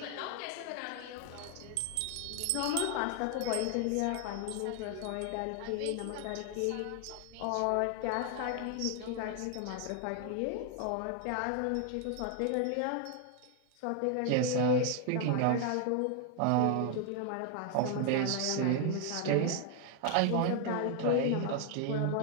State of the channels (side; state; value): both; different; correlation 0.00